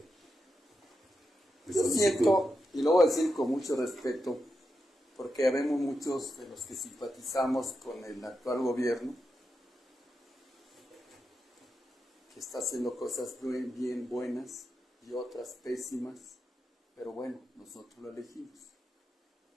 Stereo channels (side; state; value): both; normal; correlation 0.87